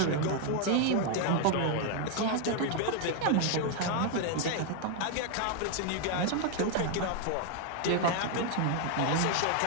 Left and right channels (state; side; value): different; both; correlation 0.01